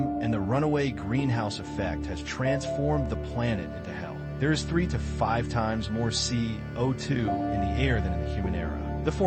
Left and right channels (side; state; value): both; identical; correlation 1.00